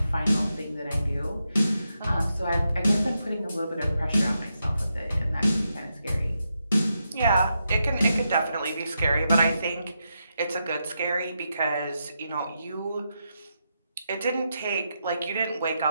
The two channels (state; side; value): inverted; both; correlation -0.84